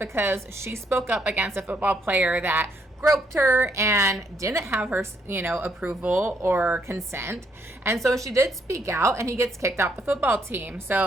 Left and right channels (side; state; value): both; normal; correlation 0.73